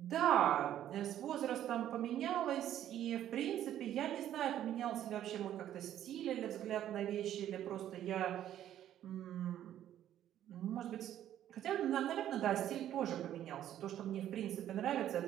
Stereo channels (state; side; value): quieter; left; 11.5 dB